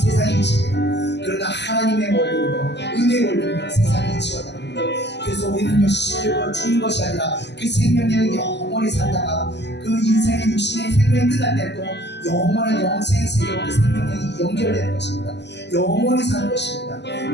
이치입니다. 그러나 하나님의 원리로 은혜의 원리로 세상의 이치와 다릅니다. 그래서 우리는요 시들고 죽는 것이 아니라 그 생명력을 영원히 살다가 그 인생의 육신의 생명이 끝날 때 또 영원한 영생의 세계로 그 생명력이 연결되는 것입니다. 영원히 사는 것입니다.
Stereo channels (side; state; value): right; late; 0.50 ms